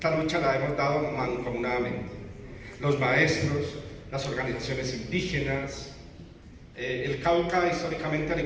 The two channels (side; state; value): both; identical; correlation 1.00